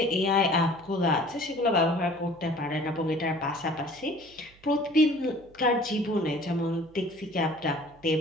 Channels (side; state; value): right; noise; hum, 27 dB below the sound